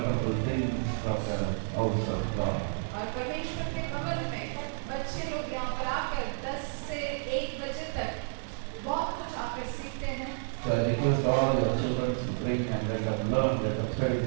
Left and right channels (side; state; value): left; silent; digital silence